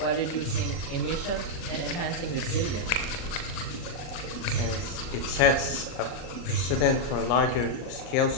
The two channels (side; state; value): right; late; 38 ms